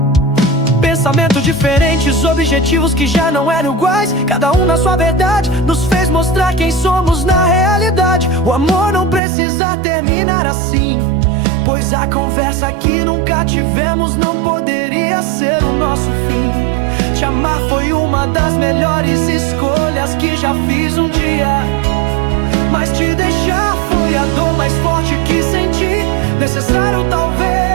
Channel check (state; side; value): drops out; left; at 9.2 s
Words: Pensamentos diferentes, objetivos que já não eram iguais, cada um na sua verdade, nos fez mostrar quem somos na realidade. O amor não precisa terminar assim, pois a conversa que nunca tivemos não poderia ser o nosso fim. Te amar foi uma das melhores escolhas que já fiz um dia, mas te deixar foi a dor mais forte que senti. Necessário